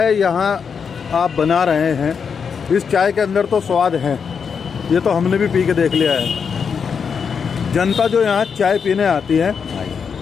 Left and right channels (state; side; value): quieter; right; 6.3 dB